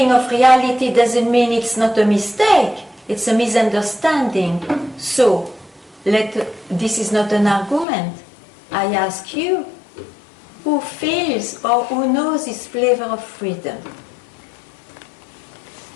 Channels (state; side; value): drops out; right; at 7.9 s